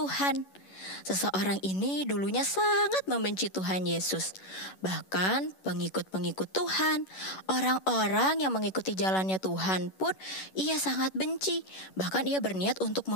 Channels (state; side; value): late; right; 11 ms